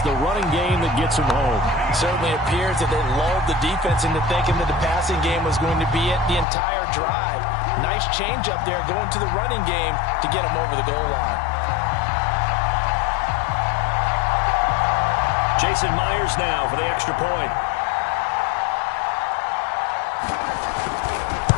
the running game that gets him home. Certainly appears that they lulled the defense into thinking that the passing game was going to be it the entire drive. Nice change up there going to the running game to get him over the goal line. Jason Myers now for the extra point.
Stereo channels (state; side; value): drops out; right; at 6.5 s